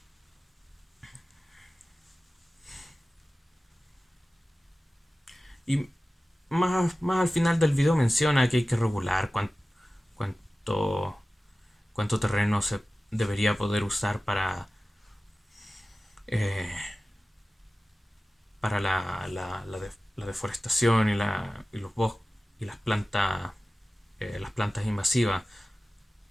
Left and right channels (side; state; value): both; normal; correlation 0.96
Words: Y más al final del video menciona que hay que regular cuánto, cuánto terreno se debería poder usar eh, para la deforestación y los bosques y las plantas invasivas